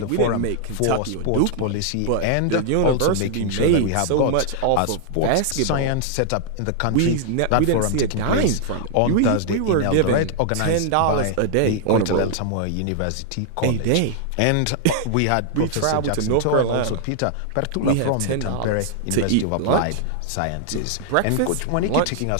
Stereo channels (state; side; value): different; both; correlation -0.01